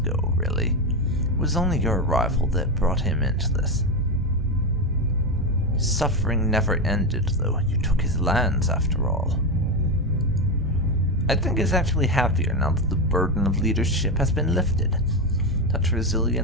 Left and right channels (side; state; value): both; normal; correlation 0.13